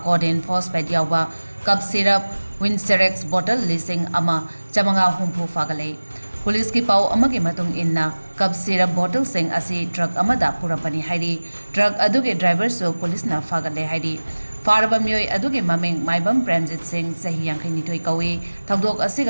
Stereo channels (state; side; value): inverted; both; correlation -1.00